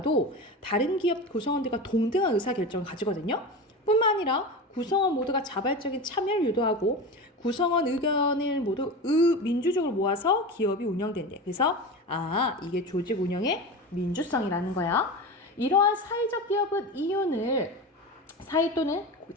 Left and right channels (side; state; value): both; normal; correlation 0.26